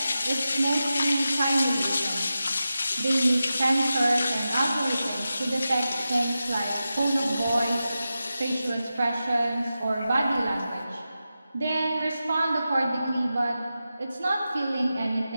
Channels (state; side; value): inverted; both; correlation -0.92